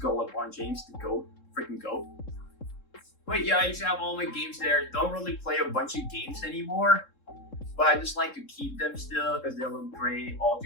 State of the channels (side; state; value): right; late; 3.7 ms